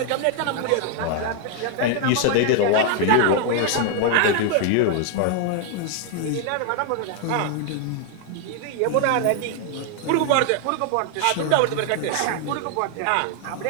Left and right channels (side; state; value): both; different; correlation 0.00